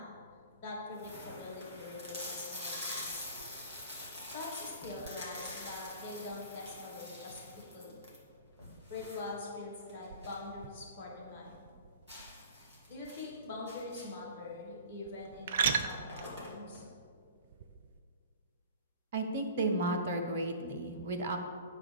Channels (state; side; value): inverted; both; correlation -0.42